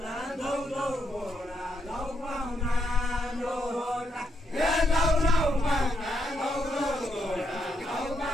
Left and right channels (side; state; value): both; normal; correlation 0.78